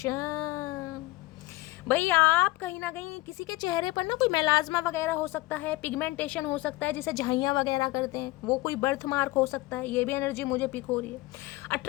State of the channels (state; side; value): quieter; right; 20.1 dB